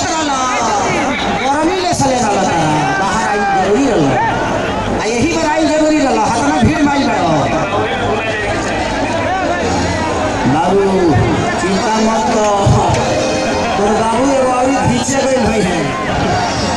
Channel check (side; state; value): both; identical; correlation 1.00